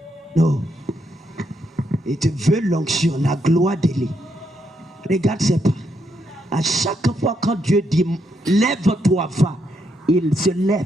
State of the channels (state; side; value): normal; both; correlation 0.78